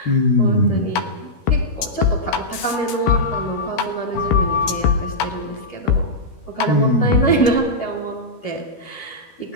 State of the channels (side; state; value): right; late; 13 ms